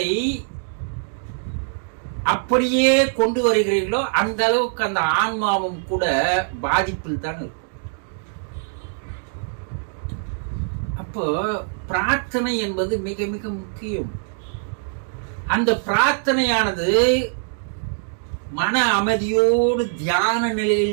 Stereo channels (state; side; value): silent; left; digital silence